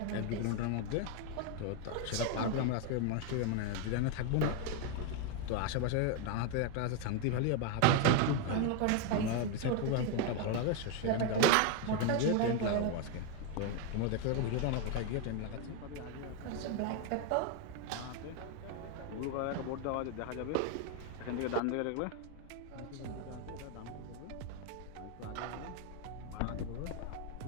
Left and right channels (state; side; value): different; both; correlation 0.01